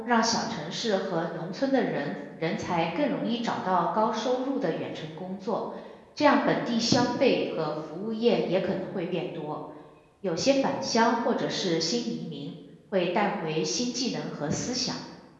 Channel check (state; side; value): identical; both; correlation 1.00